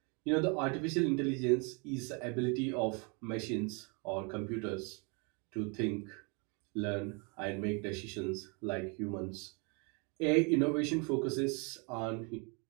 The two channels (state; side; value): quieter; left; 33.7 dB